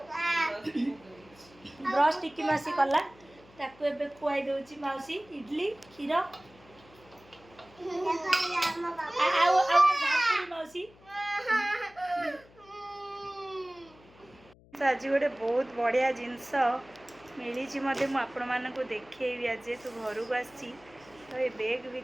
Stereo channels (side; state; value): left; noise; hum, 26 dB below the sound